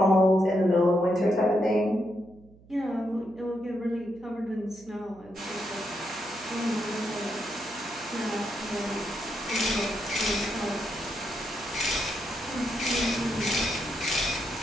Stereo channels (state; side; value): noise; right; hum, 25 dB below the sound